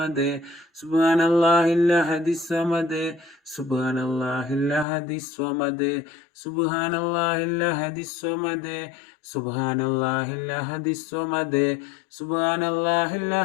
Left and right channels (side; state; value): right; drops out; at 4.9 s